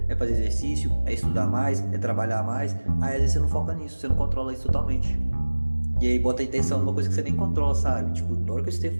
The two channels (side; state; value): both; inverted; correlation -1.00